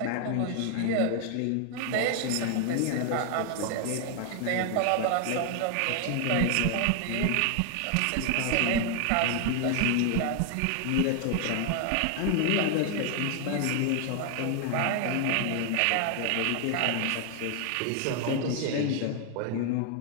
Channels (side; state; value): both; different; correlation 0.00